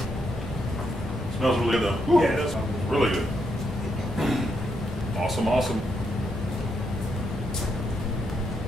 Smells really good though. Woo. Yeah, it does smell good. Really good. Awesome, awesome.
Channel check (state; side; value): normal; both; correlation 0.79